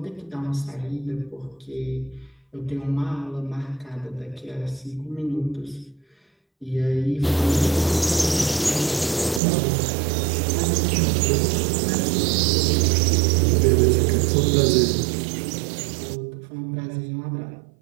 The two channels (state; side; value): drops out; left; at 9.4 s